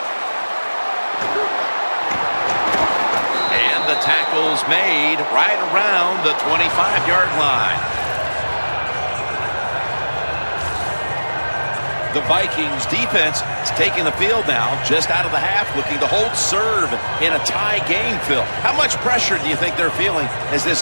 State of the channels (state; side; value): inverted; both; correlation -1.00